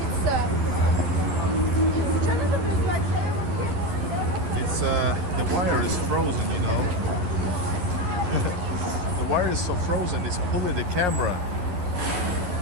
It's the wire is frozen, you know. The wire is so frozen, it's pulling the camera.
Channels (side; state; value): left; late; 11 ms